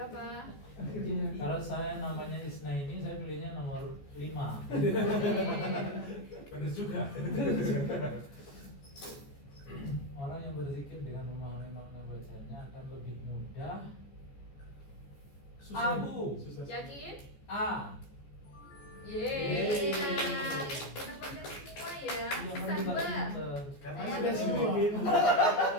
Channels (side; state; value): right; late; 14 ms